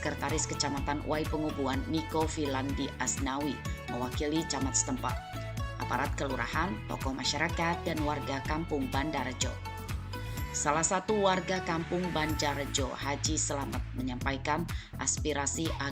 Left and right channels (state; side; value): identical; both; correlation 1.00